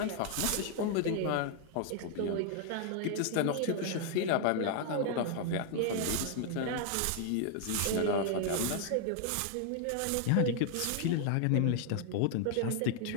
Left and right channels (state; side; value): different; both; correlation 0.00